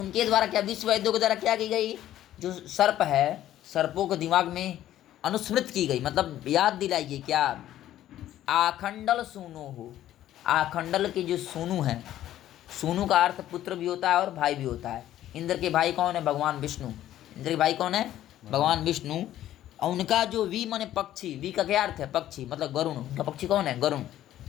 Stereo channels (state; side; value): quieter; right; 12.8 dB